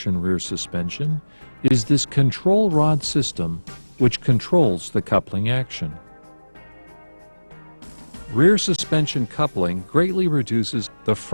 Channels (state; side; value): inverted; both; correlation -1.00